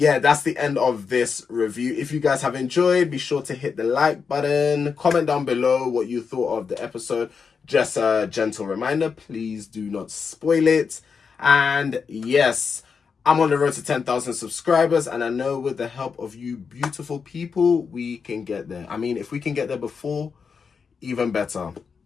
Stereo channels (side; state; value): right; quieter; 5.7 dB